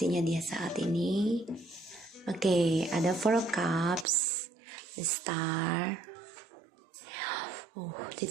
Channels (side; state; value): left; drops out; at 4.0 s